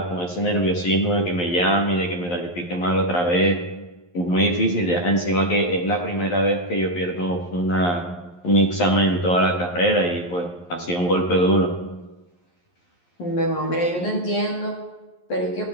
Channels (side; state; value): right; late; 11 ms